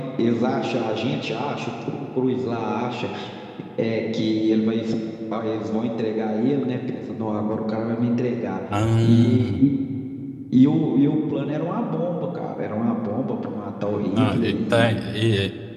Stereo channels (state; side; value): identical; both; correlation 1.00